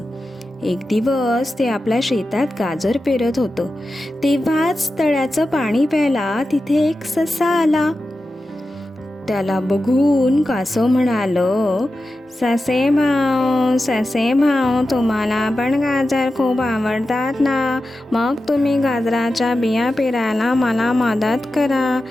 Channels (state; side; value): normal; both; correlation 0.92